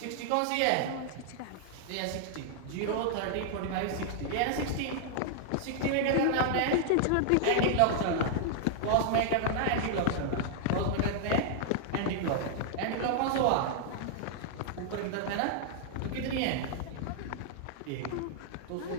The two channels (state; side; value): different; both; correlation -0.01